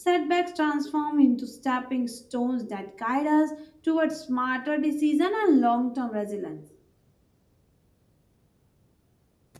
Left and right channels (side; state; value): both; identical; correlation 1.00